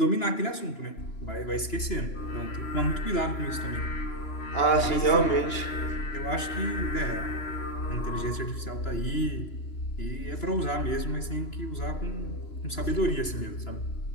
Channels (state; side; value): late; right; 2.9 ms